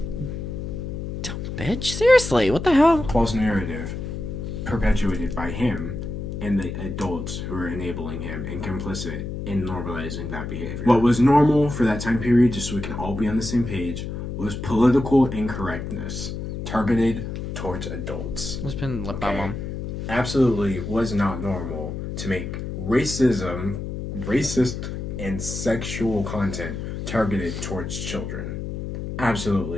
Dumb bitch. Seriously, what the hell? False narrative perpetuated by him and the adults who are enabling him and complicit in normalizing that behavior. What was normal for that time period, just so we can all be on the same page, was political incorrectness targeted towards adults. It's been lip balm on. Absolutely was not normal to make racist, and sexual content targeted towards children.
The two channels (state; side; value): noise; left; hum, 6 dB below the sound